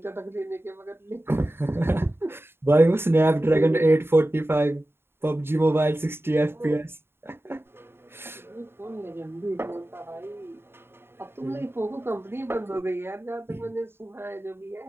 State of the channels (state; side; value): late; left; 0.11 ms